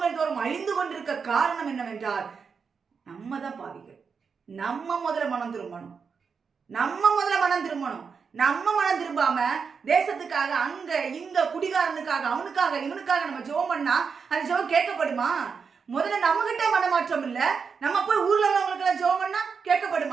தோறும் அழிந்து கொண்டிருக்க காரணம் என்னவென்றால் நம்ம தான் பாவிகள். நம்ம முதல்ல மனம் திரும்பணும். நம்ம மனம் திரும்பாம தேசத்துக்காக அங்க இங்க குடிகாரனுக்காக அவனுக்காக இவனுக்காக நம்ம ஜெபம் பண்ணா அந்த ஜெபம் கேட்கப்படுமா? முதல்ல நம்ம கிட்ட மனமாற்றம் இல்ல, நம்ம போய் ஊர்ல உள்ளவங்களுக்கு எல்லாம் ஜெபம் பண்ணா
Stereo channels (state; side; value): quieter; left; 5.8 dB